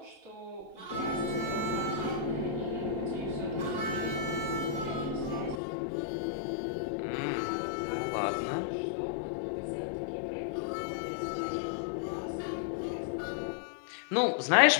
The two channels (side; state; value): right; drops out; at 5.6 s